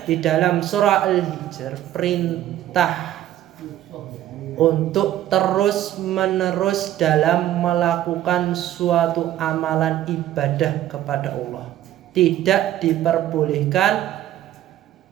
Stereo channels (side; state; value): left; quieter; 12.8 dB